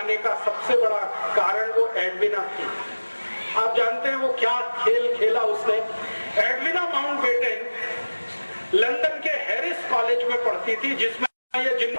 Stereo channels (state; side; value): inverted; both; correlation -1.00